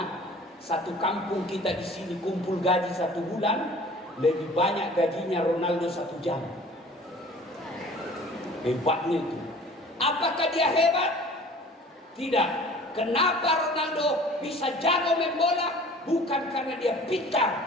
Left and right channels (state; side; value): normal; both; correlation 0.46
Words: satu kampung kita di sini kumpul gaji 1 bulan lebih banyak gajinya Ronaldo 1 jam. Hebatnya itu. Apakah dia hebat? Tidak. Kenapa Ronaldo bisa jago main bola? Bukan karena dia